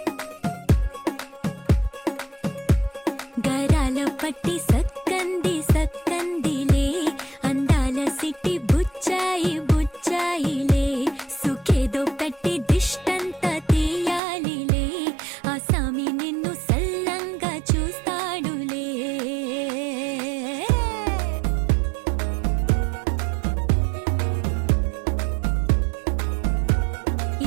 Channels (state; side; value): drops out; left; at 14.2 s